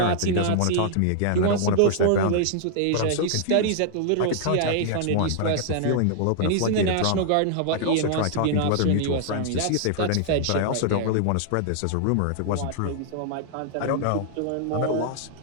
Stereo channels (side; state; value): both; different; correlation -0.01